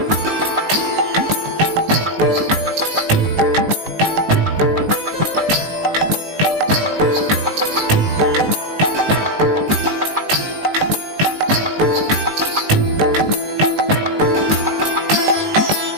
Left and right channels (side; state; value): left; late; 19 ms